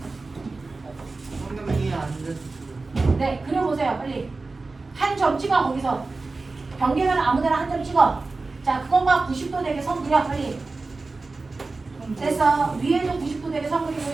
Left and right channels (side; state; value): left; quieter; 3.7 dB